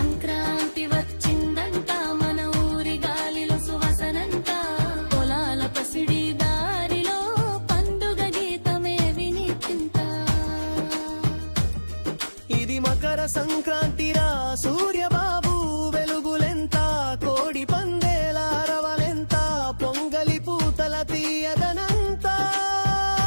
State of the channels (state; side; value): inverted; both; correlation -1.00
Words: వచ్చిందంట మన ఊరి గాలిలో సువాసనంట పొలాల పసిడి దారిలో పండుగ గీతమే వినిపింత ఇది మకర సంక్రాంతిరా సూర్యబాబు వెలుగులెంత కోడి పందేల అరవలెంత పొంగలి పూతల తీయదనంతా